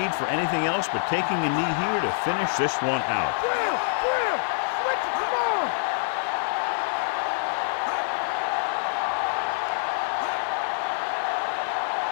for anything else but taking a knee here to finish this one out.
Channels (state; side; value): silent; right; 61 dB below the other